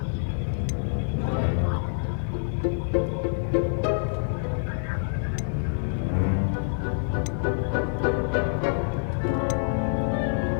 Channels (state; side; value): silent; right; digital silence